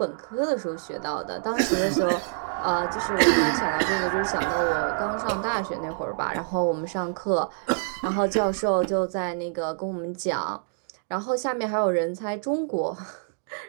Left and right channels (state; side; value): silent; left; digital silence